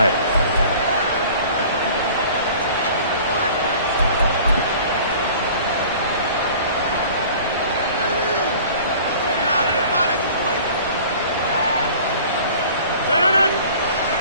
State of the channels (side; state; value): both; inverted; correlation -0.46